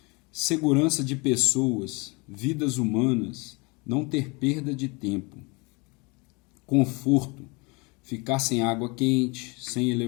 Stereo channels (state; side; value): quieter; right; 28.2 dB